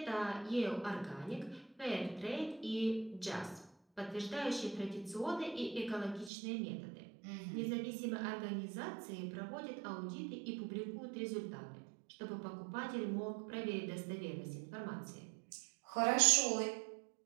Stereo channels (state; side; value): drops out; left; at 6.3 s